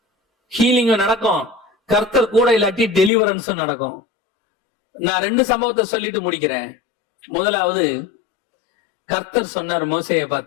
ஹீலிங்கும் நடக்கும், கர்த்தர் கூட இல்லாட்டி டெலிவரன்ஸும் நடக்கும். நான் 2 சம்பவத்தை சொல்லிட்டு முடிக்கிறேன். முதலாவது, கர்த்தர் சொன்னார் மோசேயை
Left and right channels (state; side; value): drops out; right; at 3.1 s